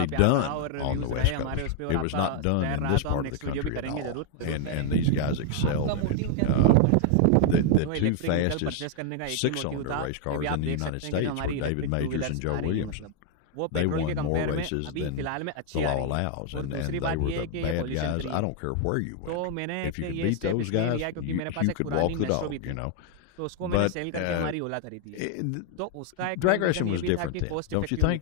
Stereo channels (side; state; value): both; different; correlation 0.00